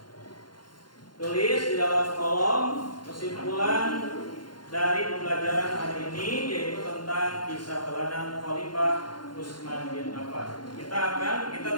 Tulis di dalam kolom kesimpulan dari pembelajaran hari ini, yaitu tentang kisah teladan Khalifah Utsman bin Affan. Kita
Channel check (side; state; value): right; late; 0.71 ms